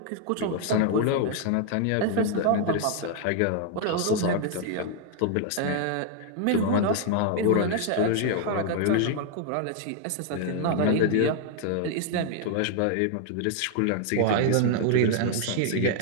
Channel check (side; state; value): both; different; correlation 0.00